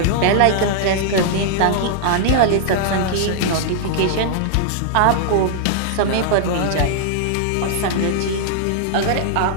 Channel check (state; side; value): different; both; correlation -0.01